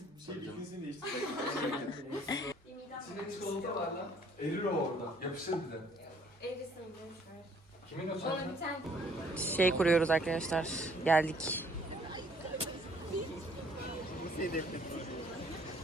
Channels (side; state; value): both; normal; correlation 0.61